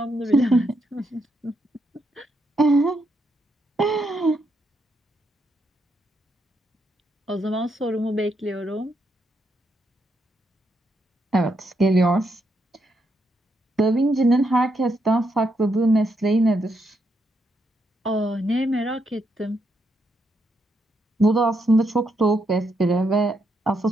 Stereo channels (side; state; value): both; normal; correlation 0.79